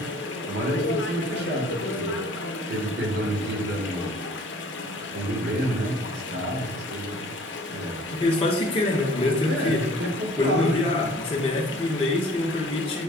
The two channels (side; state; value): both; normal; correlation 0.52